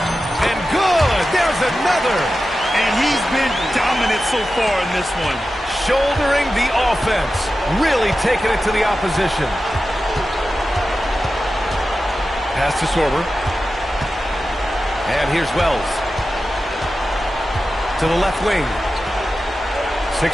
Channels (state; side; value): normal; both; correlation 0.93